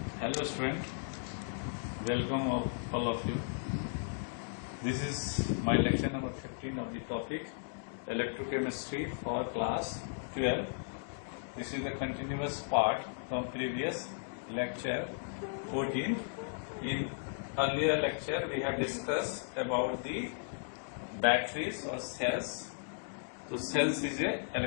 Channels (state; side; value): silent; right; digital silence